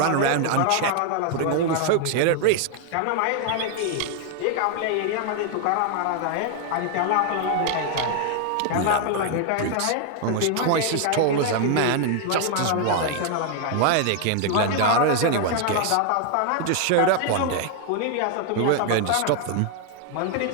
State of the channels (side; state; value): both; different; correlation 0.00